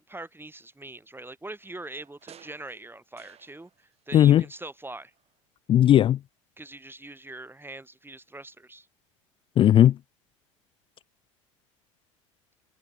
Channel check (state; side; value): quieter; right; 10.7 dB